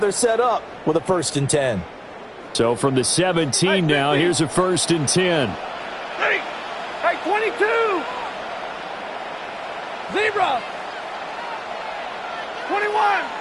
set up with a 1st and 10. So from the 17 now, here's a 1st and 10. Hey, 22. Zebra. 21.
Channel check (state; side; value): identical; both; correlation 1.00